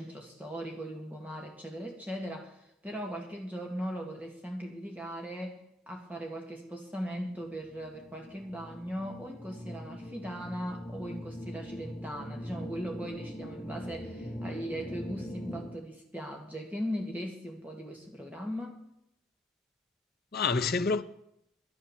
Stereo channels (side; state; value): both; normal; correlation 0.72